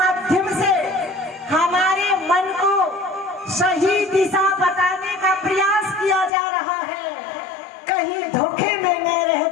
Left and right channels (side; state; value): right; drops out; at 6.3 s